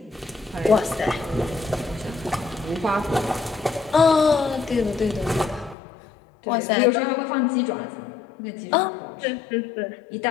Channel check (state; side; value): drops out; right; at 5.8 s